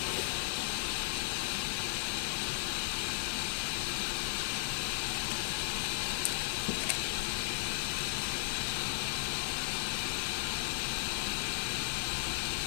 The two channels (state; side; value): silent; right; digital silence